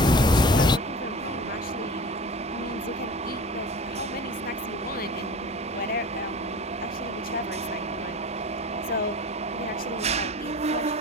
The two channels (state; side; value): normal; both; correlation 0.38